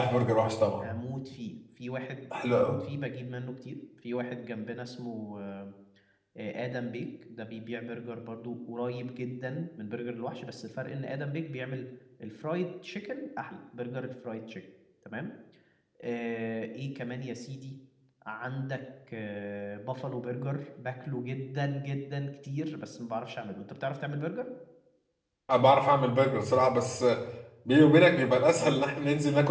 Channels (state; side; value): identical; both; correlation 1.00